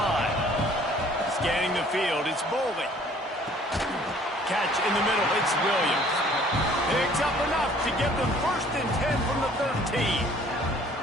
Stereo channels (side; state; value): both; normal; correlation 0.56